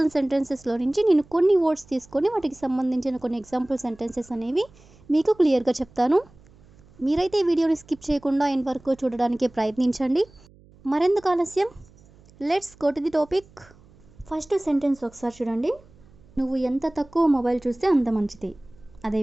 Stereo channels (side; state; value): right; noise; hum, 27 dB below the sound